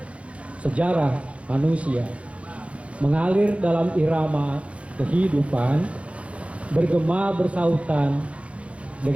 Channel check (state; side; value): late; left; 0.062 ms